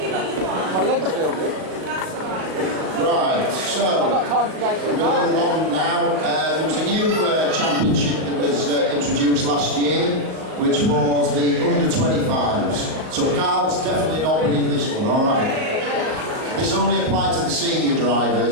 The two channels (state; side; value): late; left; 38 ms